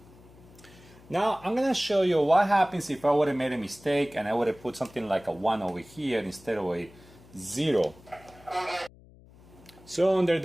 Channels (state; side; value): noise; left; hum, 24 dB below the sound